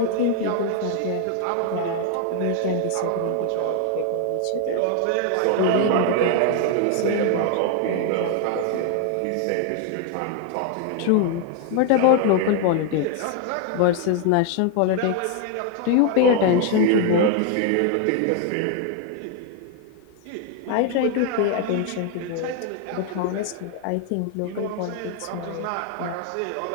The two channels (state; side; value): different; both; correlation 0.00